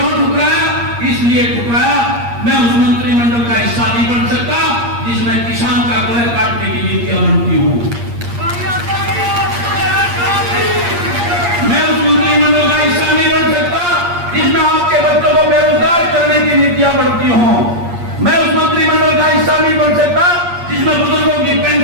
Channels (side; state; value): left; late; 8.5 ms